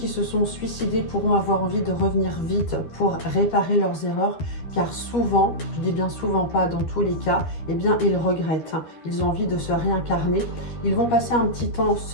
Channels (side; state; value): right; late; 12 ms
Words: se sont suicidés pourront avoir envie de revenir vite pour réparer leurs erreurs, car souvent, je dis bien souvent, pas dans tous les cas, eh bien ils regrettent. Ils ont envie de se réincarner. Ils vont passer un petit temps